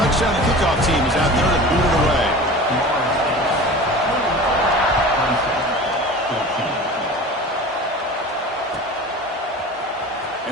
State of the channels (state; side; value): normal; both; correlation 0.37